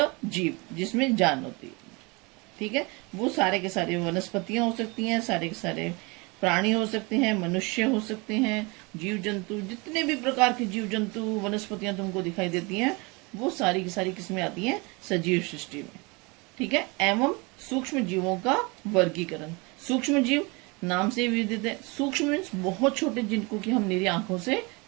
जिसमें जान होती है। ठीक है, वो सारे के सारे वनस्पतियां हो सकती हैं, सारे के सारे प्राणी हो सकते हैं, मनुष्य हो सकते हैं, जीव जंतु, जितने भी प्रकार के जीव जंतु वनस्पतियां तुमको दिखाई देती हैं वो सारी की सारी किसमें आती हैं, सजीव सृष्टि में। ठीक है, एवं सूक्ष्म जीवों का वर्गीकरण। सूक्ष्म जीव नाम से विदित है। सूक्ष्म मीन्स बहुत छोटे, जिनको कि हम निरी आंखों से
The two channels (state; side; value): quieter; left; 27.5 dB